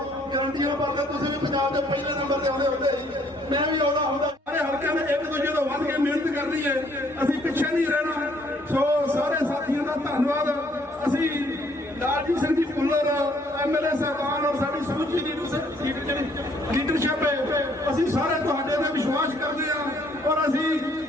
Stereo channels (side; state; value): both; normal; correlation 0.64